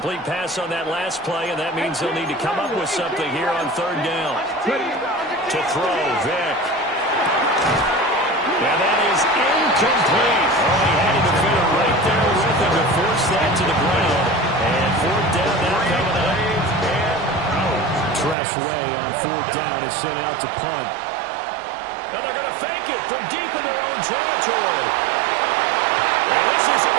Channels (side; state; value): left; drops out; at 18.4 s